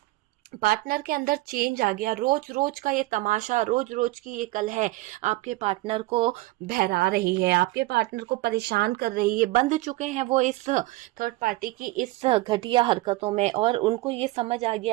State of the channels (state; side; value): quieter; left; 19.7 dB